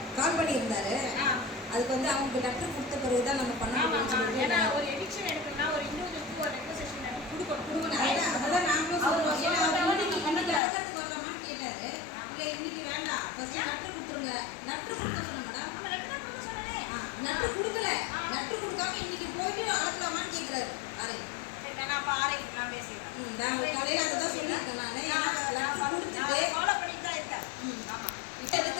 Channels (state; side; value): drops out; right; at 10.6 s